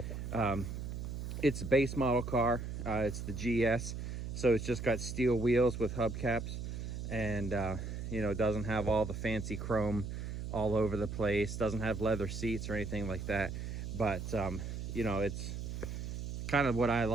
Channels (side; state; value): right; noise; hum, 5 dB below the sound